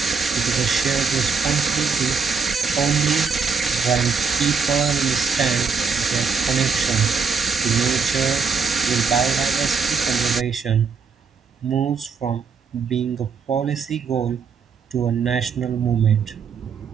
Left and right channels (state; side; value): quieter; left; 5.5 dB